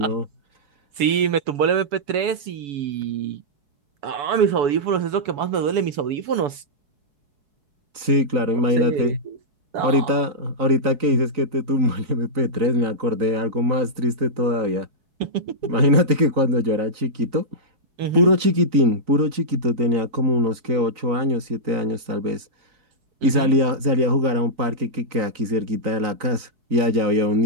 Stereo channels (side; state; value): left; late; 3.9 ms